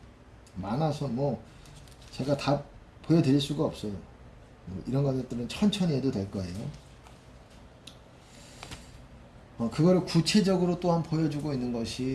많아서 뭐 제가 다 보여드릴 수가 없어요. 이런 것들은 천천히 해도 될 거예요. 그거를 구체적으로 또한 보여주고 있는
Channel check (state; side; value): identical; both; correlation 1.00